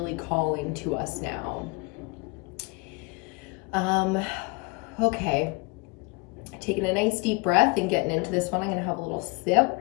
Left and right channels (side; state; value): right; quieter; 28.6 dB